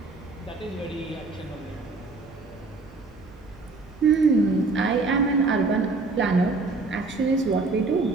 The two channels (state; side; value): quieter; left; 3.7 dB